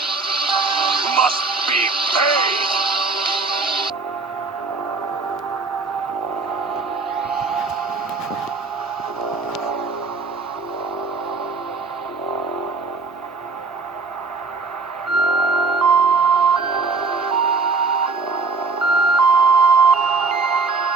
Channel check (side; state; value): left; quieter; 4.2 dB